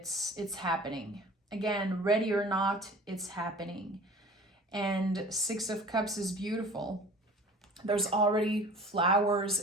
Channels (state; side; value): normal; both; correlation 0.44